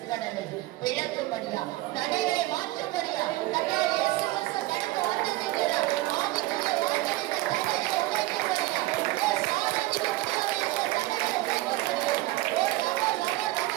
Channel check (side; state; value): left; quieter; 18.2 dB